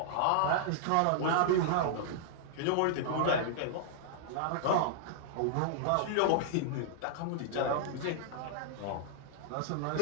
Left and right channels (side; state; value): both; different; correlation -0.01